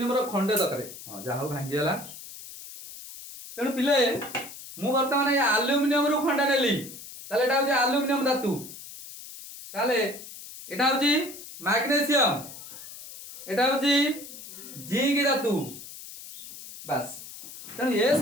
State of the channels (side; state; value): left; noise; hiss, 14 dB below the sound